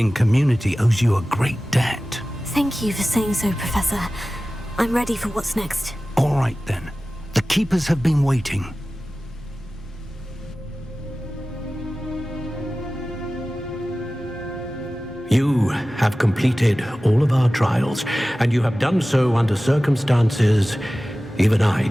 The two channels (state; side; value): normal; both; correlation 0.96